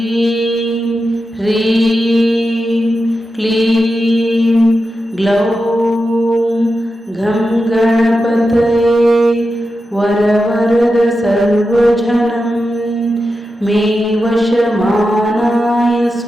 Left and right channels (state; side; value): normal; both; correlation 0.90